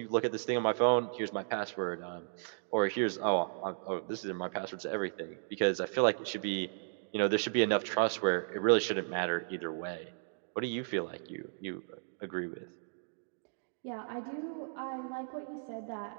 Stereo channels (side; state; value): left; silent; digital silence